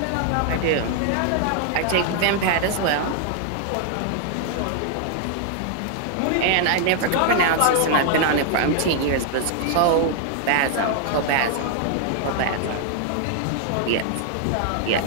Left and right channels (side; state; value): both; different; correlation 0.00